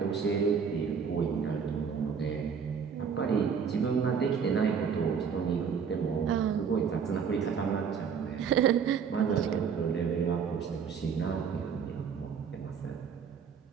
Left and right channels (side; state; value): left; quieter; 6.6 dB